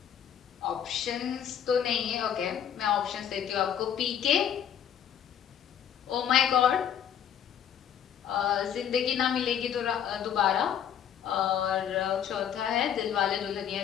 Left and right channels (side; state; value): right; quieter; 9.2 dB